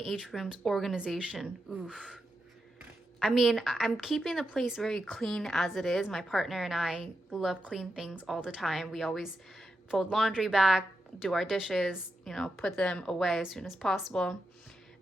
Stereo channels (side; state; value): both; normal; correlation 0.87